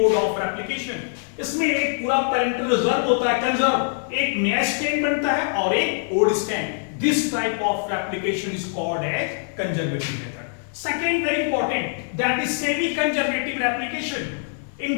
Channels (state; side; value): silent; right; 57 dB below the other